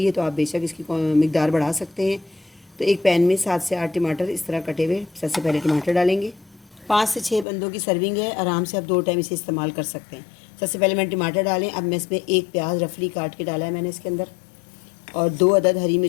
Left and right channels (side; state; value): right; drops out; at 7.5 s